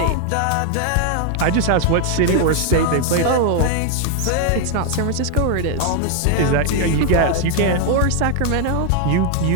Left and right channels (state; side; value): different; both; correlation 0.00